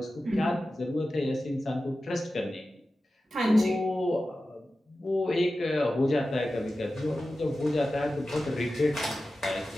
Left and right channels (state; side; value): normal; both; correlation 0.94